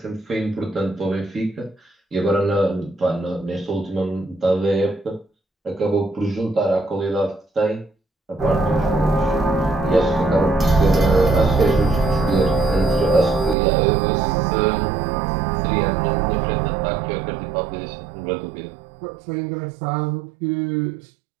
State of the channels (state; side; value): drops out; left; at 13.6 s